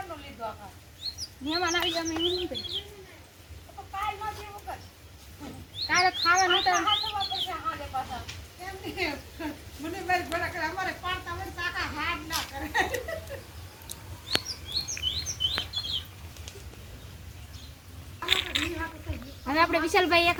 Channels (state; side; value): identical; both; correlation 1.00